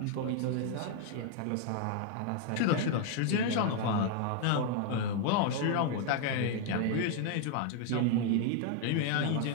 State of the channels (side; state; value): both; different; correlation 0.00